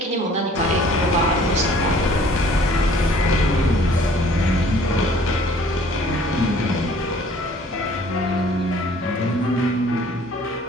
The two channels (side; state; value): both; normal; correlation 0.54